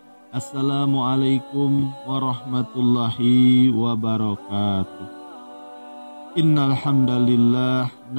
Assalamualaikum warahmatullahi wabarakatuh. Innal hamdalillah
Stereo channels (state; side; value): inverted; both; correlation -1.00